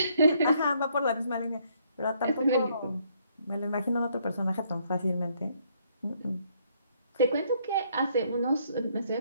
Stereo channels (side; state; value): both; inverted; correlation -0.69